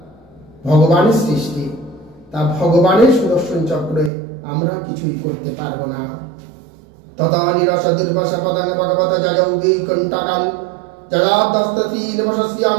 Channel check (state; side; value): drops out; left; at 4.1 s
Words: ভগবানের সৃষ্টি, তা ভগবানের সুদর্শন চক্রে আমরা কিছুই করতে পারবো না। তথা নিরস দুর্বাসা পদাঙ্গ ভগবত জয়ৌগী কণ্টাকাল জয়াদস্তীন